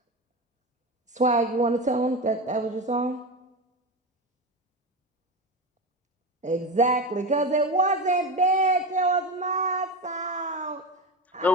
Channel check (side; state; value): both; normal; correlation 0.21